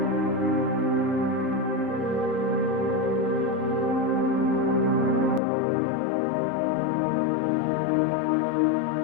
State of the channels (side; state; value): right; drops out; at 5.4 s